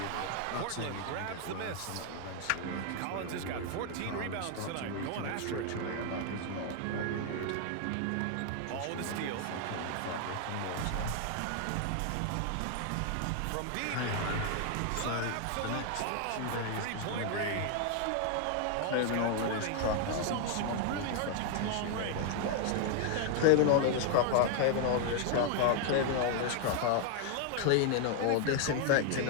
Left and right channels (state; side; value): different; both; correlation 0.00